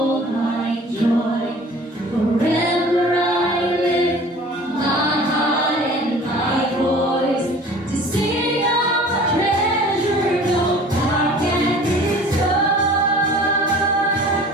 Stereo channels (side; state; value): both; normal; correlation 0.46